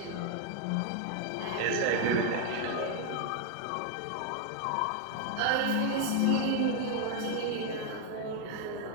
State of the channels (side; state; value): both; different; correlation 0.00